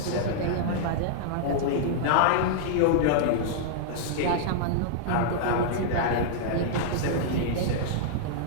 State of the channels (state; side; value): different; both; correlation -0.01